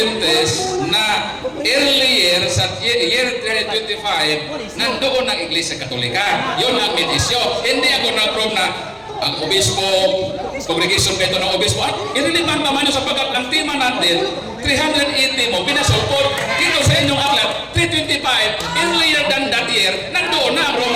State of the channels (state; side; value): identical; both; correlation 1.00